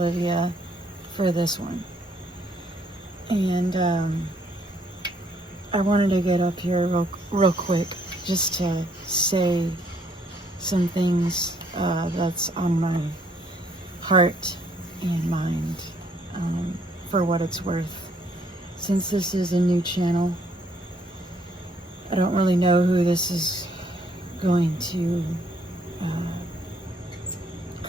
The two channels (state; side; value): normal; both; correlation 0.68